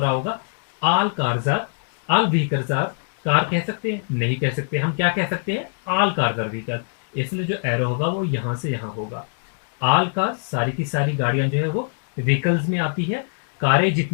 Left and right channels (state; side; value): silent; right; digital silence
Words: होगा। All cars are, all vehicles are car कह सकते हैं? नहीं कह सकते। हम क्या कह सकते हैं? All cars are vehicle. इसलिए जो एरो होगा वो यहां से यहां होगा। ऑल कार्स, सारी की सारी गाड़ियां जो है वो व्हीकल्स में आती है। कारें